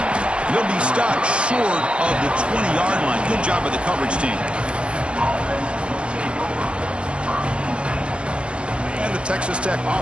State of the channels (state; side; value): late; left; 0.057 ms